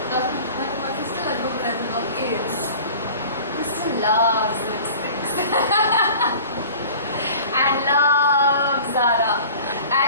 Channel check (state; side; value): inverted; both; correlation -0.43